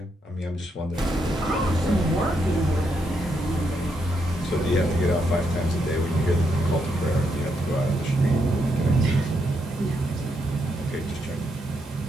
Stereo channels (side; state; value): both; normal; correlation 0.79